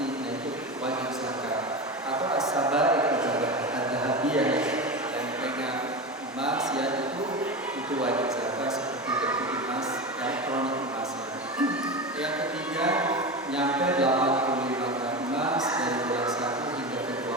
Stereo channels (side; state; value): both; normal; correlation 0.23